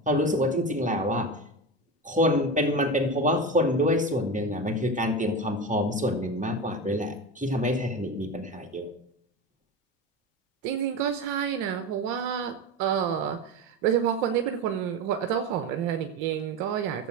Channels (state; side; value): normal; both; correlation 0.23